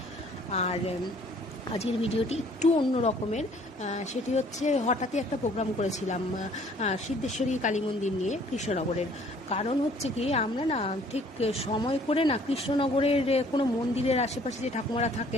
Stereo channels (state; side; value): normal; both; correlation 0.58